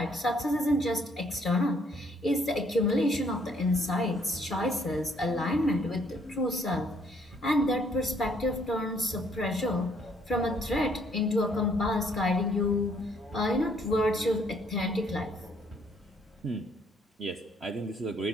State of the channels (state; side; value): normal; both; correlation 0.66